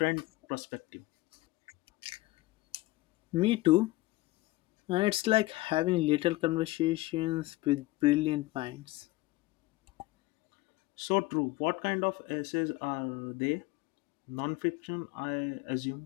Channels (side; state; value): right; quieter; 19.5 dB